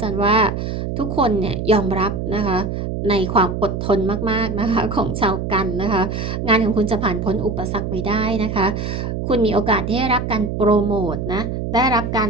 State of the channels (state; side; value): noise; right; hum, 3 dB below the sound